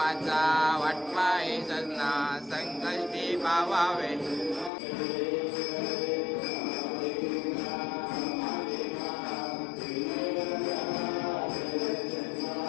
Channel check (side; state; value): right; drops out; at 4.7 s